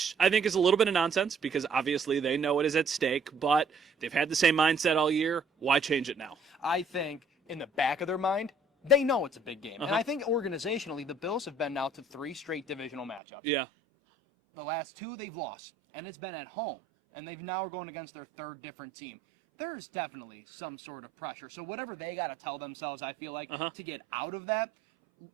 I think is a little bit of nonsense because obviously they know it is at stake, but they've had the same mindset all year. Why change it now? I think in the back of their mind, they know it's a big game. And I think organizationally, the Bills have been now to 3 straight divisional matchups. Yeah. The last 2 they've lost, and it's been at home. And they've now going against their 3rd different team. There's definitely some sort of pressure. So whatever they got to tell themselves, I feel like, to get out of that,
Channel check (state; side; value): drops out; left; at 13.2 s